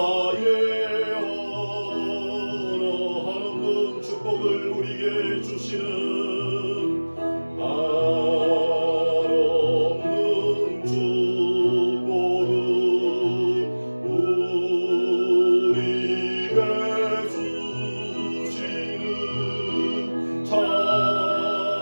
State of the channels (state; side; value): inverted; both; correlation -1.00